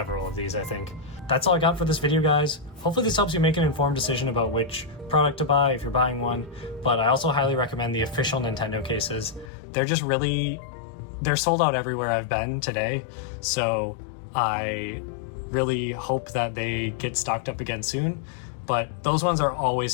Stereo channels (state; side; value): drops out; right; at 9.5 s